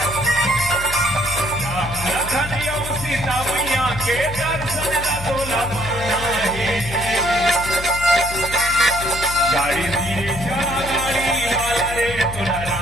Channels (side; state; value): left; noise; hum, 9 dB below the sound